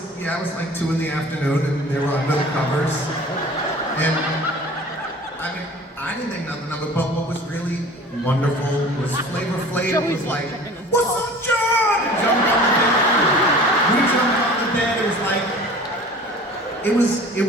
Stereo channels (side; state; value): both; normal; correlation 0.43